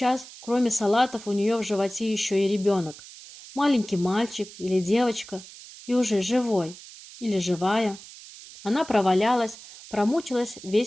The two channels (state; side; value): noise; right; hiss, 17 dB below the sound